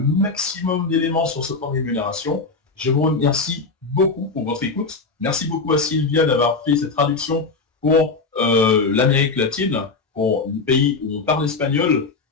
maximum d'éléments sur ce plan de rémunération. Je vous remercie beaucoup pour votre écoute. Merci beaucoup à Sylvia d'avoir fait cette traduction pour l'Amérique latine, pour les pays où on parle espagnol.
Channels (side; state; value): right; quieter; 4.1 dB